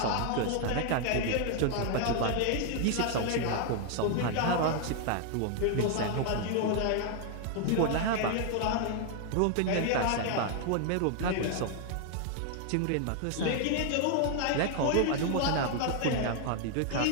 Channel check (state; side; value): different; both; correlation 0.00